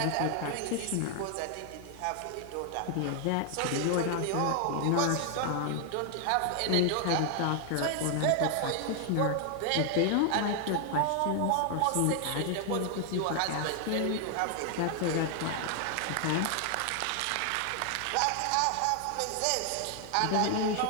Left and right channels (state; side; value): different; both; correlation 0.00